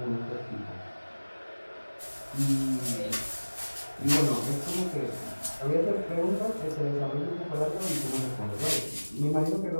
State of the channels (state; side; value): inverted; both; correlation -1.00